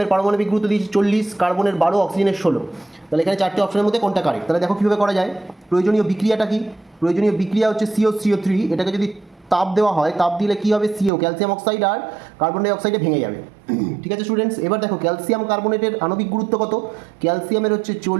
পারমাণবিক গুরুত্ব দিয়েছে 40, কার্বনের 12, অক্সিজেনের 16। তাহলে এখানে চারটে অপশনের মধ্যে কোনটা কারেক্ট? তাহলে দেখো কীভাবে করা যায়। প্রয়োজনীয় বিক্রিয়াটা কি? প্রয়োজনীয় বিক্রিয়া হচ্ছে CO3, এটাকে যদি তাপ দেওয়া হয়, তাপ দিলে কী হবে? CO ক্যালসিয়াম অক্সাইড আর কার্বন ডাই অক্সাইডে ভেঙে যাবে। ঠিক আছে স্টুডেন্টস, এবার দেখো ক্যালসিয়াম কার্বনেটের আণবিক গুরুত্ব কত? ক্যালসিয়ামের হচ্ছে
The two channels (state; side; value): drops out; left; at 11.1 s